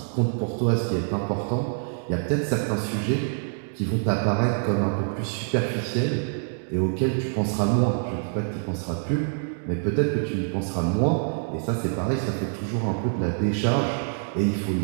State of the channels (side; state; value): left; silent; digital silence